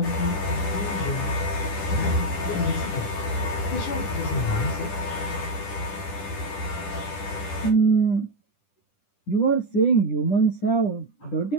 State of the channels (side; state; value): right; late; 10 ms